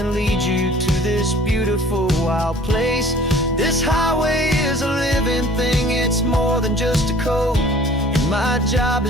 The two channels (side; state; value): both; normal; correlation 0.50